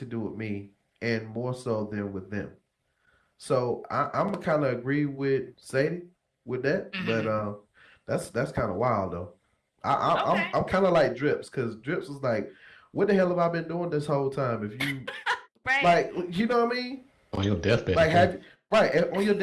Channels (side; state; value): both; identical; correlation 1.00